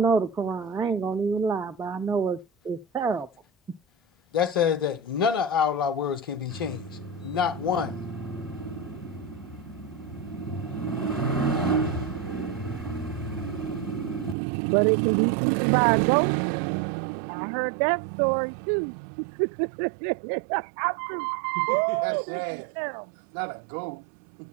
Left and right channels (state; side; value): drops out; left; at 14.4 s